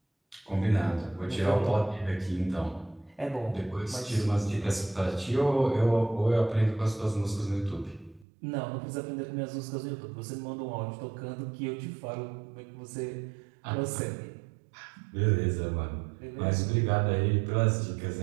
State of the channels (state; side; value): drops out; left; at 8.2 s